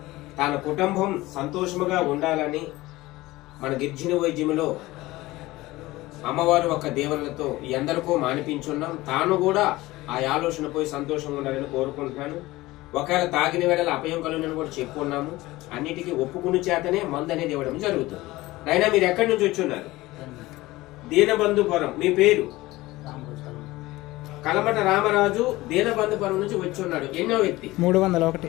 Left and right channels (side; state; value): right; quieter; 18.9 dB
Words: తన కుటుంబం సంతోషముగా ఉండాలని మన గిర్జిన వైద్యములో అమ్మవారు ఒక దేవులతో ఎందరికో మానిపించున్నాం. తాను కూడా ఆ ఆలోచన పోయి సంతోషంగా ఉండాలని కోరుకుంటున్నాను. ఒకవేళ తాగిన వేళ అపయం కలుగునని కూడా చెప్పుకున్నాము. అన్నిటికీ ఒప్పుకుని చేతనే మందు అనేది ఇవ్వడం జరుగుతుంది. అయినా మీరు ఎక్కడి నుంచి వచ్చి ఉన్నారు? దీనబంధుపురం. మీ పేరు? కలమట రామరాజు. దీనబంధుపురం నుంచి వచ్చి ఉన్నాడు. ఎన్నో వ్యక్తి?